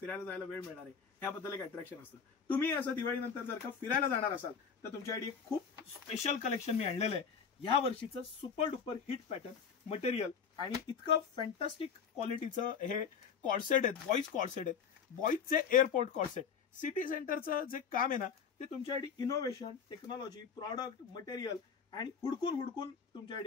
जायला वेळ मिळणार आहे, ह्याबद्दल एक अट्रॅक्शन असतं. तुम्ही असं दिवाळीनंतर जर का फिरायला जाणार असाल तर तुमच्यासाठी एक खूप स्पेशल कलेक्शन मी आणलेलं आहे. या वर्षीचं super duper hit pattern material आणि इतकं फॅन्टास्टिक क्वालिटीचं हे कॉर्सेट आहेत, बॉईज कॉर्सेट आहेत, बॉईजचे एअरपोर्ट कॉर्सेट. सिटी सेंटरचं जे काम आहे ना, ते तुमच्यासाठी इनोव्हेशन, टेक्नॉलॉजी, प्रॉडक्ट, मटेरियल आणि हुडकून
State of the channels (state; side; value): quieter; right; 6.6 dB